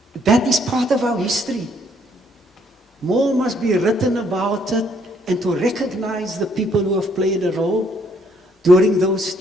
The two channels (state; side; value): normal; both; correlation 0.67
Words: That is part of our history. More must be written about it, and to recognize the people who have played a role during those